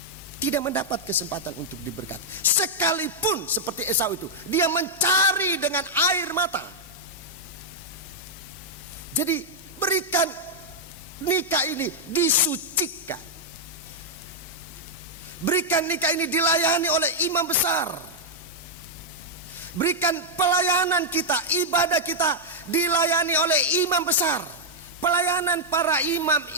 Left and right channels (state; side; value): normal; both; correlation -0.05